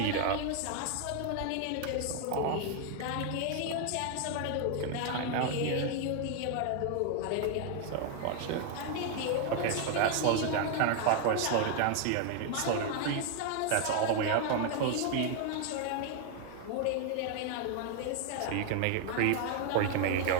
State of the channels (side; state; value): both; different; correlation 0.00